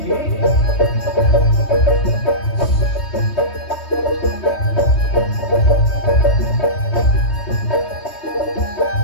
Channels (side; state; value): right; late; 3.2 ms